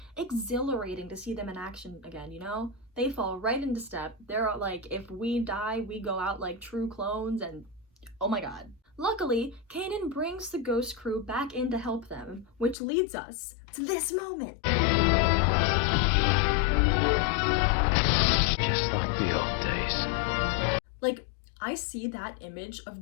exhilarating to see them in action again, you know? They fall right into step. They're like, if we die, we go out like true clones, and oh my god. Luckily, Kanan brings the Ghost Crew back in to help them, which leads us to this moment. Just like the old days. Like, I see that image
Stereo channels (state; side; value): drops out; right; at 12.8 s